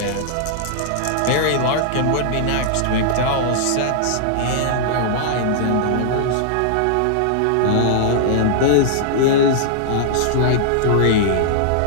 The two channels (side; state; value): both; different; correlation -0.01